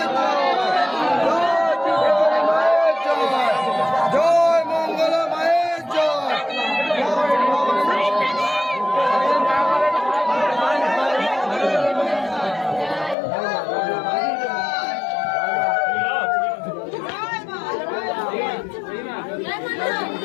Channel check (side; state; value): right; drops out; at 13.2 s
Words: জয় মঙ্গলা মায়ের জয়।